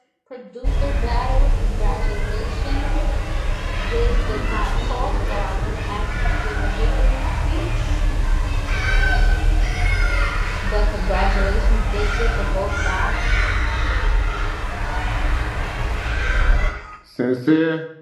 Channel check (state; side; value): identical; both; correlation 1.00